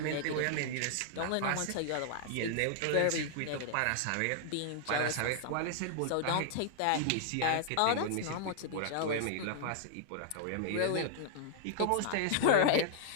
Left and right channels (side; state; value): both; different; correlation -0.01